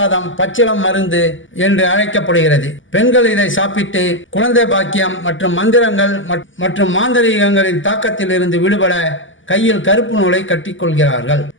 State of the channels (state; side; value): late; right; 0.56 ms